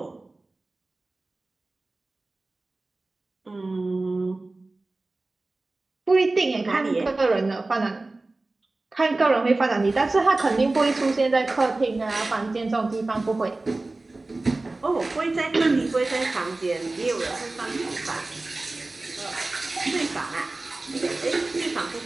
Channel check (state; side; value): quieter; left; 3.2 dB